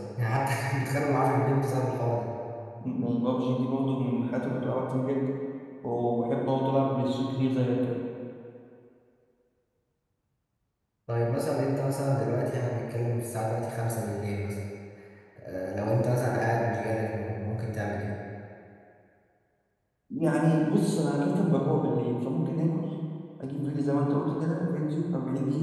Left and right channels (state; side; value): identical; both; correlation 1.00